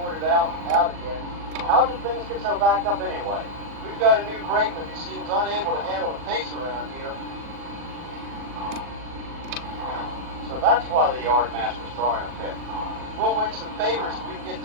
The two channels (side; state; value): left; late; 40 ms